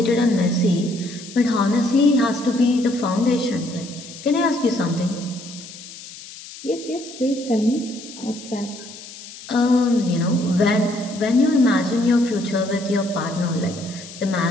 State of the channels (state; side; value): noise; left; hiss, 15 dB below the sound